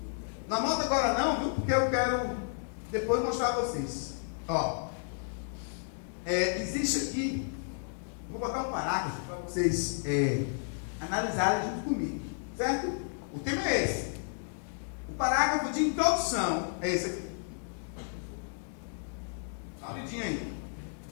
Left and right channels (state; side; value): silent; right; digital silence